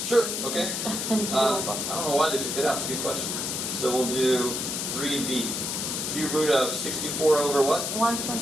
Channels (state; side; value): noise; left; hiss, 2 dB below the sound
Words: Sure, okay. I I don't know why they took that out. It's a good question. So we'll do 3b. Cube root of 64 over what?